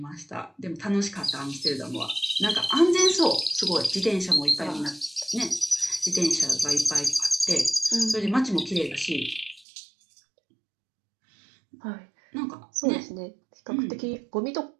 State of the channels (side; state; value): left; drops out; at 9.7 s